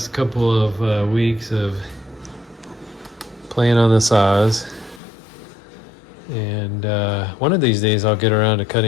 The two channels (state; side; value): drops out; right; at 5.0 s